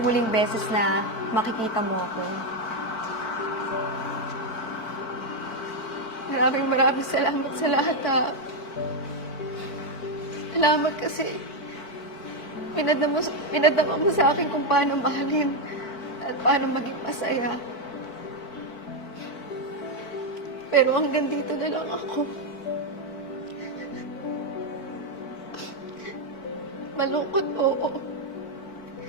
huling beses na makikita mo ako. Maraming salamat sa lahat, ha. Salamat kasi pinadama mo sa akin kung paano mahalin at paano maging masaya. Pero hanggang dito na lang ako. Malungkot, oo.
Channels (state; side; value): late; right; 4.5 ms